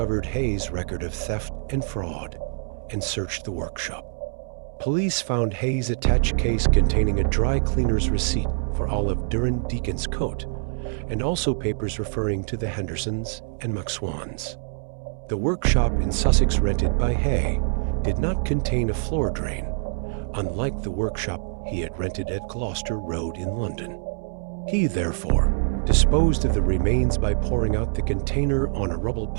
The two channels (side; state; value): left; silent; 62 dB below the other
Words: Haigh's record of theft and fraud and searched the workshop. Police found Haigh's attached case containing a dry cleaner's receipt for Olive Deacon's coat, and also papers referring to the Hendersons and McSwans. The workshop in Sussex rented by Haigh did not contain a floor drain, unlike the workshop he had rented at Gloucester Road in London. He, therefore, disposed of the remains by pouring out the container on a rubble